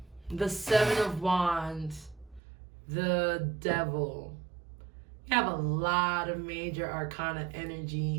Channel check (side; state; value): left; drops out; at 2.4 s